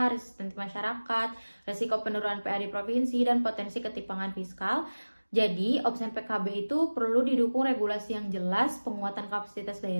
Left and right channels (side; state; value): both; inverted; correlation -1.00